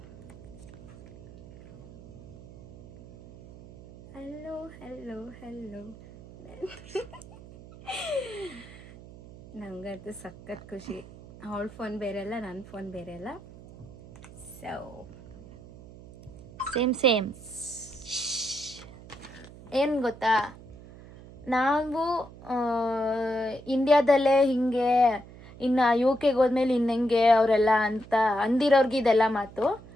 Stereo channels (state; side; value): noise; right; hum, 18 dB below the sound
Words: ಹಲೋ ಇವತ್ತು ಸಖತ್ ಖುಷಿ. ಅವಳ ಫೋನ್ ಬೇರೆ ಅಲ್ಲ, ನನ್ನ ಫೋನ್ ಬೇರೆ ಅಲ್ಲ. ಸೊ ಸೇಮ್ ಏನು ಗೊತ್ತಾ, ನಾವು ಇಂಡಿಯಾದಲ್ಲೇ ಹಿಂಗೆ, ಇನ್ನು ಯು ಕೆಗೆ ಹೋದ್ಮೇಲೆ ಇನ್ನೆಂಗೆ ಅವರೆಲ್ಲ ಅಂತ ಅಂದಿರೋರ್ಗೆ ಇದೆಲ್ಲ ಮಾತು.